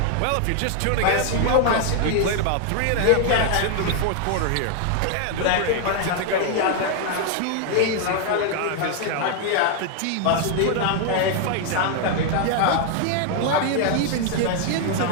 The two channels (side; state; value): both; different; correlation 0.00